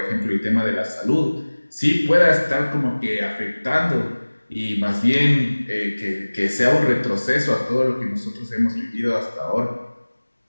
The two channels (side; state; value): both; inverted; correlation -1.00